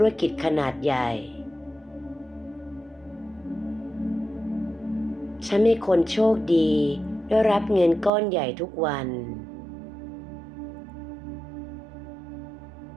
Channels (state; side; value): drops out; left; at 8.1 s